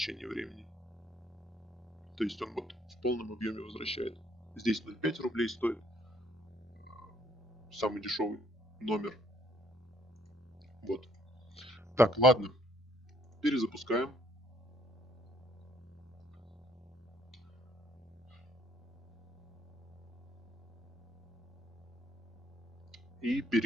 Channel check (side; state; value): both; normal; correlation 0.66